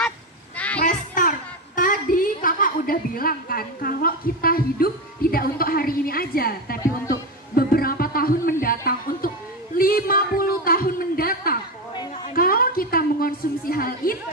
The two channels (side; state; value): both; normal; correlation 0.15